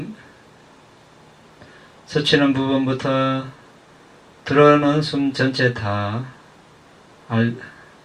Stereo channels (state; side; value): identical; both; correlation 1.00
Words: 스치는 부분부터 들어오는 숨 전체 다